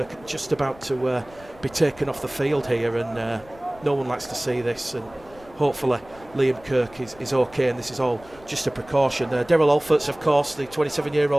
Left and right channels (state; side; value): noise; left; rumble, 23 dB below the sound